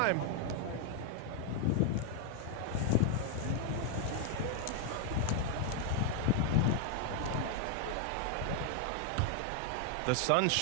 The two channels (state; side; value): different; both; correlation 0.00